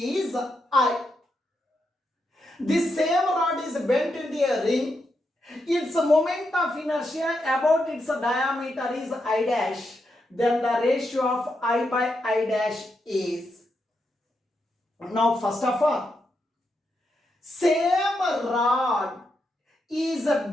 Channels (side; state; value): both; normal; correlation 0.83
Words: I. This same rod is bent into a ring. Its moment of inertia about its diameter is I dash. Then the ratio of I by I dash is. Now first of all, same rod is